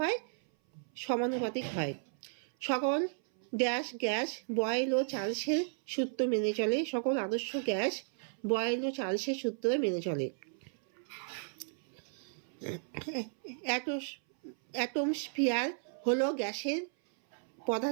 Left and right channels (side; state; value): left; silent; 55 dB below the other